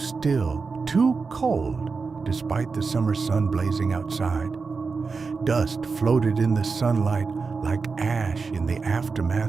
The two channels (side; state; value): left; quieter; 4.7 dB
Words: too cold, despite the summer sun blazing outside. Dust floated in the sunlight like ash in the